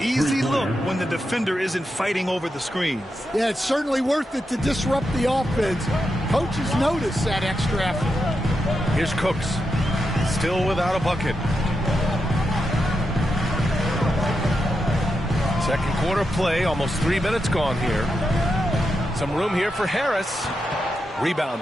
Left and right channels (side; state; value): both; normal; correlation 0.86